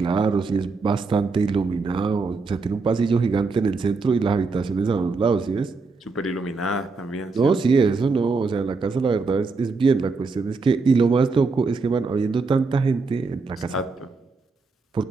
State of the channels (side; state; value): left; quieter; 4.2 dB